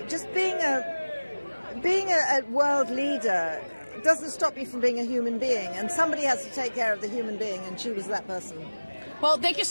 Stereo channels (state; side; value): inverted; both; correlation -1.00